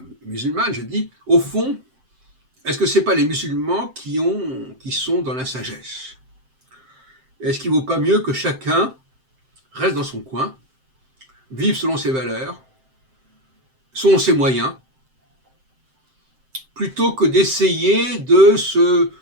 musulmane. Je dis, au fond, est-ce que ce n'est pas les musulmans qui sont dans la sagesse? Est-ce qu'il ne vaut pas mieux que chacun reste dans son coin, vive selon ses valeurs, selon ses moyens, plutôt que d'essayer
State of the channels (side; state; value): left; late; 7.7 ms